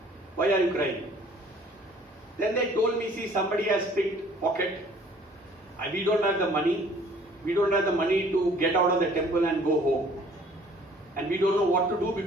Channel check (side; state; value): both; normal; correlation 0.55